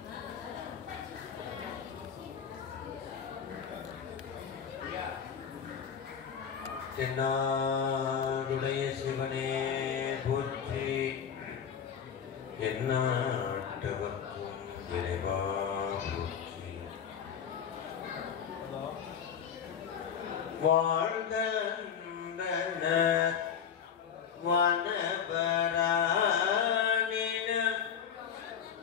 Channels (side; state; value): right; quieter; 7.7 dB